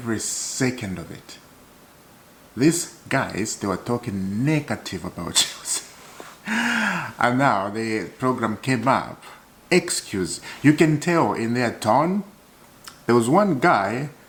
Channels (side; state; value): both; identical; correlation 1.00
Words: second of it. These guys, they were talking negative about Chelsea, and now the program came up. Excuse. You can tell in their tone. There was one guy